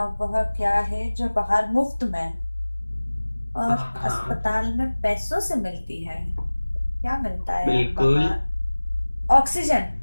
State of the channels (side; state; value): both; inverted; correlation -1.00